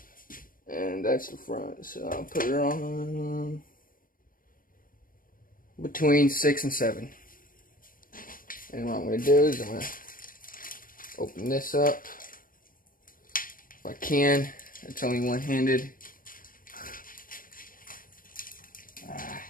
and that's the front. So I'll put it on between 6 and 7. And what I'm going to do is I'm going to open this up if I can. It's only one-handed.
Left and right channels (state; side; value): late; right; 0.40 ms